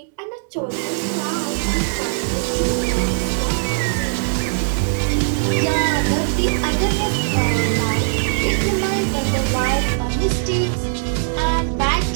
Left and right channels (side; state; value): left; silent; 66 dB below the other